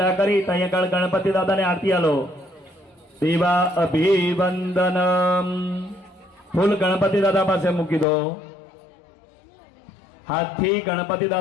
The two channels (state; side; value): drops out; right; at 8.1 s